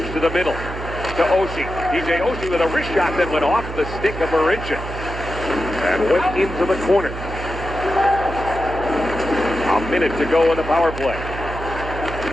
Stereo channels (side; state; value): right; noise; hum, 8 dB below the sound